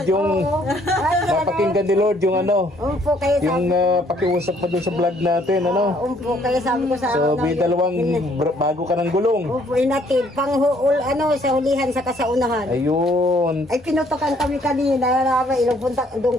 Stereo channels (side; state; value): both; normal; correlation 0.64